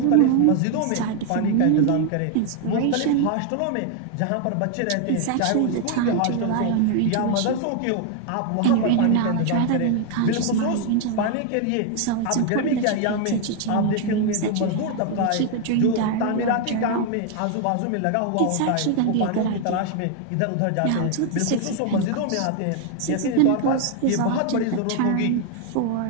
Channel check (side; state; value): both; different; correlation 0.00